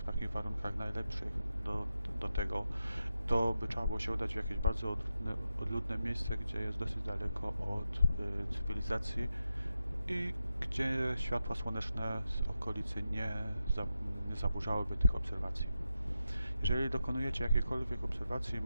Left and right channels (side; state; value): both; inverted; correlation -0.88